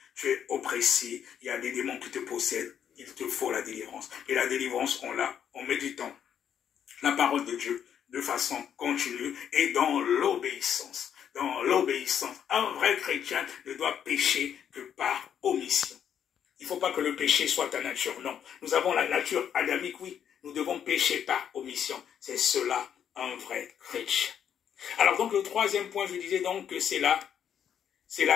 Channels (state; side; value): quieter; right; 8.8 dB